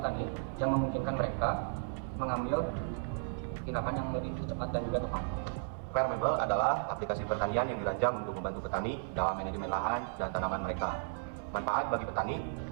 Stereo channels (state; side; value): silent; left; 55 dB below the other